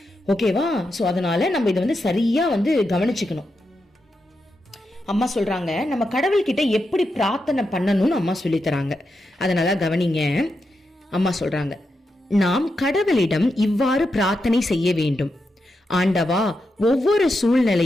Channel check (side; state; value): both; normal; correlation 0.86